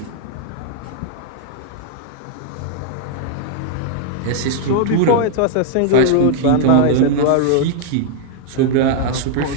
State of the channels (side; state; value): both; different; correlation -0.01